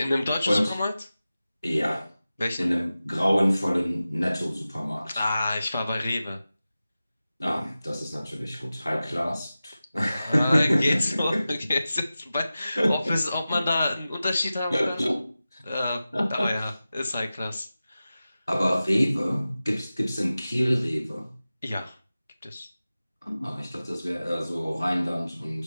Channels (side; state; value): both; inverted; correlation -0.95